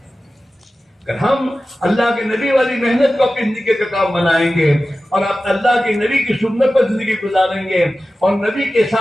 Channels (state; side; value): normal; both; correlation 0.95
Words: اگر ہم اللہ کے نبی والی محنت کو اپنی زندگی کا کام بنائیں گے اور آپ اللہ کے نبی کی سنت پر زندگی گزاریں گے اور نبی کے